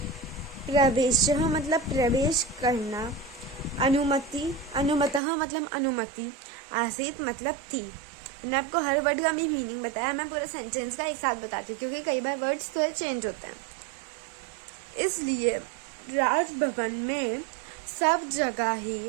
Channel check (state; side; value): drops out; left; at 5.2 s